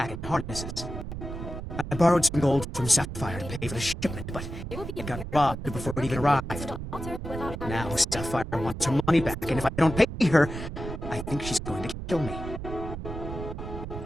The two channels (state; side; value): noise; right; rumble, 8 dB below the sound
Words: and harnesses. I borrowed some gold from Sapphire to pay for the shipment, but it got robbed before it even arrived. Now Sapphire wants her money back, and if I don't pay her, I think she's going to kill me.